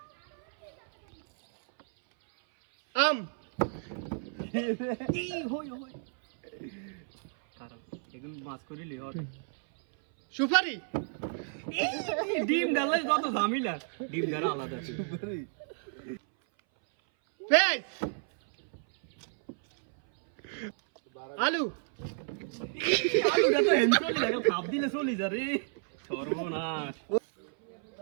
আম এখন মাছ করিলি ওর সুপারি ডিম ডালে যত ঝামেলা, ডিম ডালা আলাদা আছে। পেঁয়াজ আলু আলুটা তো হেন চলে লাগে, খাপ দিলে চলে যা রে, সর্বনাশ।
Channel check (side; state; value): left; silent; 57 dB below the other